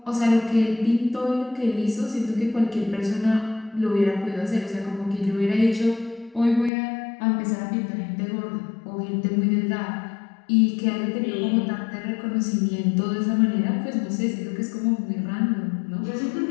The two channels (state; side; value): drops out; right; at 6.7 s